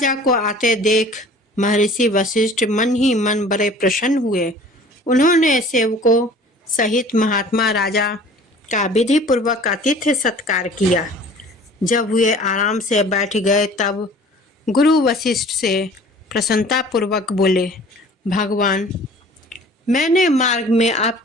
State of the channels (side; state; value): both; normal; correlation 0.47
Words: को आते देख महर्षि वशिष्ठ मन ही मन बड़े प्रसन्न हुए। उन्होंने सेवकों सहित महात्मा राजा का विधि पूर्वक आतिथ्य सत्कार किया। जब वे आराम से बैठ गए तब गुरु वशिष्ठ से प्रसन्नता पूर्वक बोले, भगवान, मैंने मार्ग में